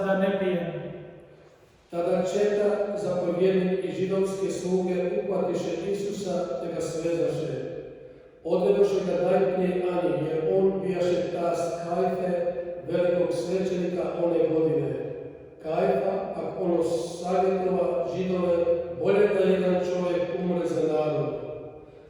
ne pijem. Tada četa, zapovjednik i židovske sluge uhvatiše Isusa te ga svezaše. Odvedoše ga najprije Ani, jer on bijaše tast Kajfe, velikog svećenika one godine. Kajfa, pak ono savjetova Židove, bolje da jedan čovjek umre za narod.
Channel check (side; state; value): both; identical; correlation 1.00